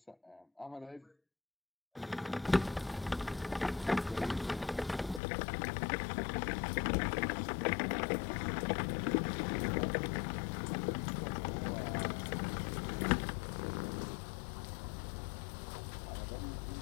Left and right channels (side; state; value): right; drops out; at 5.2 s